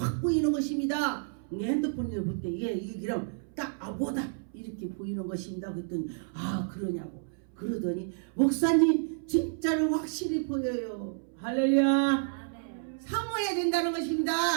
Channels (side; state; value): left; silent; 58 dB below the other